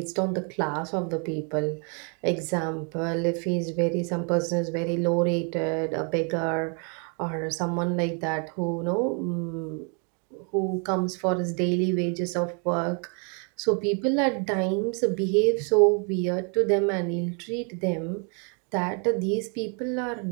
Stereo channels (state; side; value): quieter; left; 38.2 dB